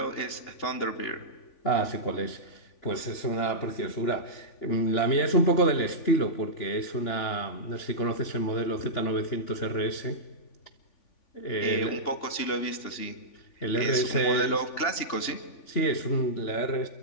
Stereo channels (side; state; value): right; late; 3.5 ms